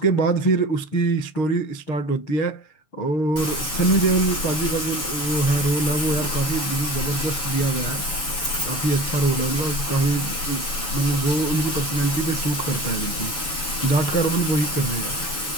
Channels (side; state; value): right; late; 7.1 ms